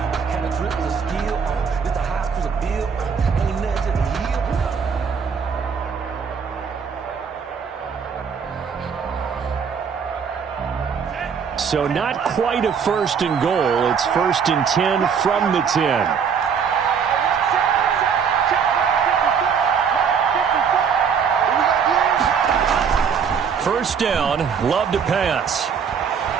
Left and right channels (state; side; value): quieter; left; 6.7 dB